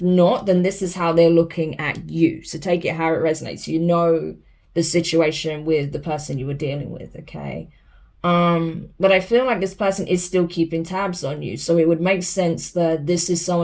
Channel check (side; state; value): both; identical; correlation 1.00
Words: not, then this is how they're looking at you. So take it how it resonates. You know the situation with the person you were dealing with, okay? But I feel like this person is still keeping tabs on you. So it would make sense that this is